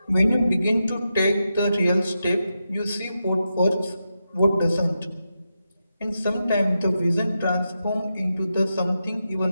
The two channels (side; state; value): both; inverted; correlation -0.88